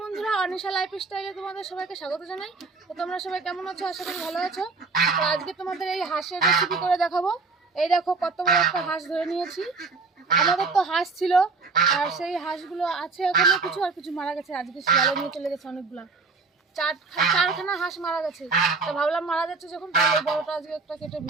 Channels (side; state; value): left; quieter; 4.2 dB